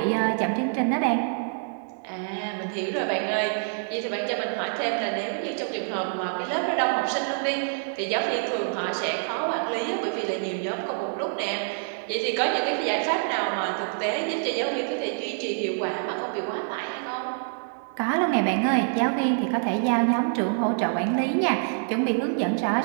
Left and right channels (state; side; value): silent; left; 61 dB below the other